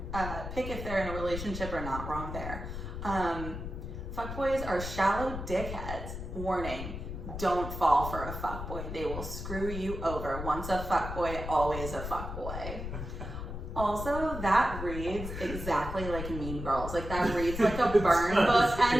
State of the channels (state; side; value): noise; left; rumble, 7 dB below the sound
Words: they're in a relationship or not. Wrong there. Fuckboys are shallow dickheads. Warning, don't fall for a fuckboy. They will screw you over. Once a fuckboy, always a fuckboy. Also, that reads exactly like Mean Girls. Like, that reads like a burn book